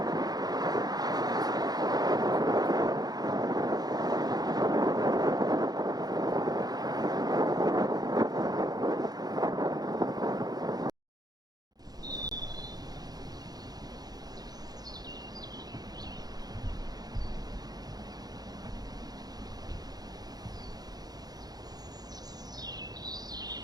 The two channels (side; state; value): left; late; 0.19 ms